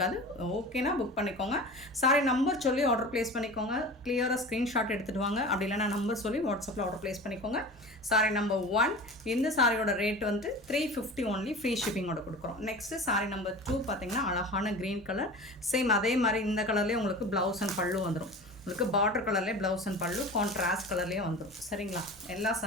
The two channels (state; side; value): normal; both; correlation 0.35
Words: ஓகேனா புக் பண்ணிக்கோங்க. சாரி நம்பர் சொல்லி ஆர்டர் ப்ளேஸ் பண்ணிக்கோங்க. கிளியராக ஸ்க்ரீன்ஷாட் எடுத்துகிட்டு வாங்க. அப்படி இல்லைனா நம்பர் சொல்லி வாட்ஸ்அப்பில் ஆர்டர் ப்ளேஸ் பண்ணிக்கோங்க. சாரி நம்பர் 1 இந்த சாரியோட ரேட் வந்து 350 ஒன்லி, ஃப்ரீ ஷிப்பிங்கோட கொடுக்குறோம். நெக்ஸ்ட்டு சாரி நம்பர் 2 பார்த்திங்கன்னா அழகான க்ரீன் கலர். சேம் அதே மாதிரி இந்த கலர்லேயே உங்களுக்கு ப்ளவுஸ் அண்ட் பல்லு வந்துடும். உங்களுக்கு பார்டர் கலர்லேயே ப்ளவுஸ் அண்ட் பல்லு கான்ட்ராஸ்ட் கலர்லேயே வந்துடும். சரிங்களா? எல்லா